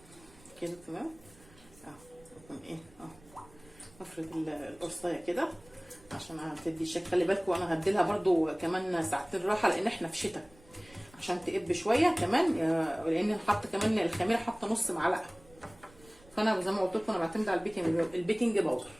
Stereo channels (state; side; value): noise; right; rumble, 26 dB below the sound